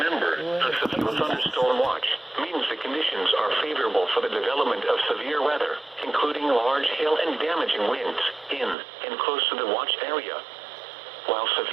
a severe thunderstorm watch means the conditions are favorable for the development of severe weather, including large hail and damaging winds in and close to the watched area. While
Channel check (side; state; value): left; drops out; at 8.8 s